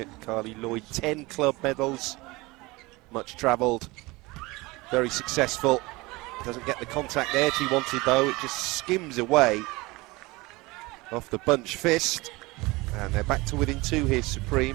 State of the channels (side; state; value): left; quieter; 22.7 dB